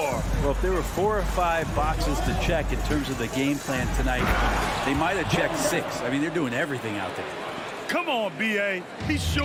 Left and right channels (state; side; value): identical; both; correlation 1.00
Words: Well, if there were 4 or 5 boxes to check in terms of the game plan tonight, they might have checked 6. I mean, they're doing everything out there. Come on, B.A. He